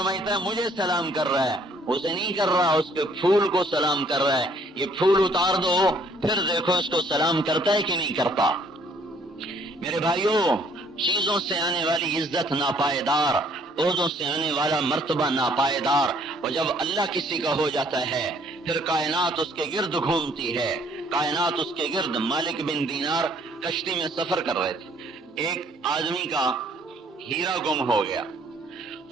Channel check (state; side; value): normal; both; correlation 0.62